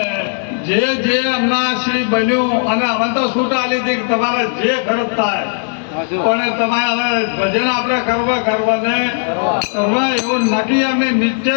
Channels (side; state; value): right; silent; 57 dB below the other